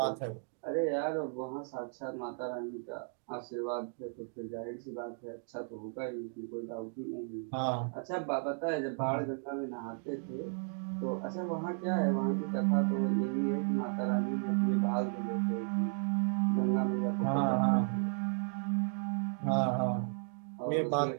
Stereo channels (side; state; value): left; silent; 55 dB below the other